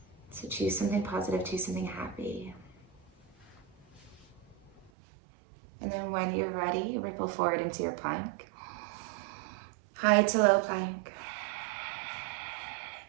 So choose something positive, choose something happy. And then when you're ready, ripple forward into your plank. High to low plank.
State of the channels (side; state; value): left; drops out; at 4.9 s